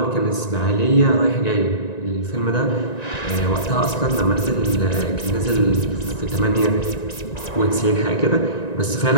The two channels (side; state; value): right; late; 1.9 ms